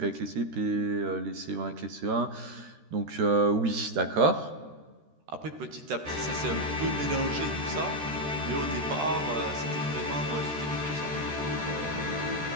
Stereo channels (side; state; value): left; late; 13 ms